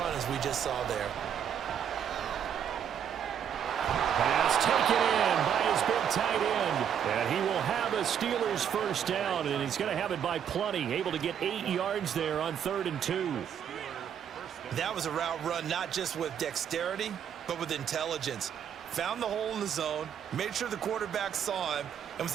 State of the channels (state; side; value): quieter; left; 8.7 dB